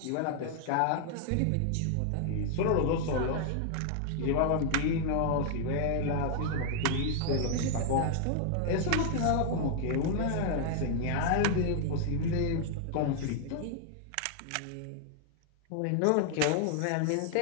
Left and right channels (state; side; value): different; both; correlation 0.00